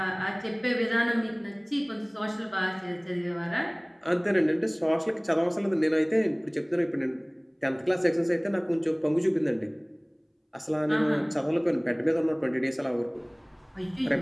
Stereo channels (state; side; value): identical; both; correlation 1.00